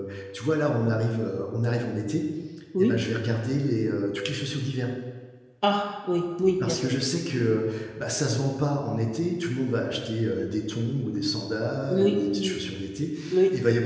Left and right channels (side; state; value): both; identical; correlation 1.00